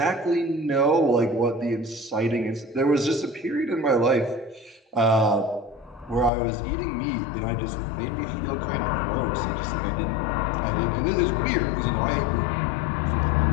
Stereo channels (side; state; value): right; drops out; at 6.3 s